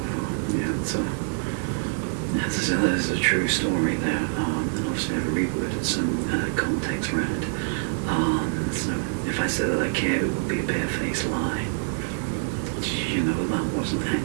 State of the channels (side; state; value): left; silent; digital silence